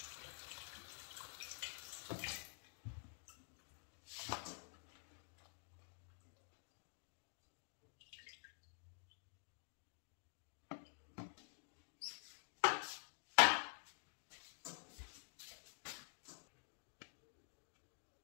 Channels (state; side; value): silent; right; digital silence